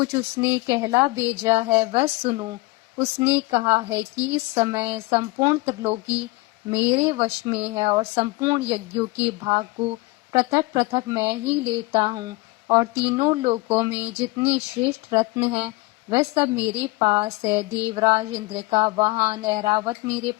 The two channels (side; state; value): right; quieter; 22.7 dB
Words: उसने कहला भेजा है वह सुनो। उसने कहा है कि इस समय संपूर्ण त्रिलोकी मेरे वश में है और संपूर्ण यज्ञों के भाग को पृथक पृथक मैं ही लेता हूँ और तीनों लोकों में जितने श्रेष्ठ रत्न हैं वह सब मेरे पास है। देवराज इंद्र का वाहन ऐरावत मेरे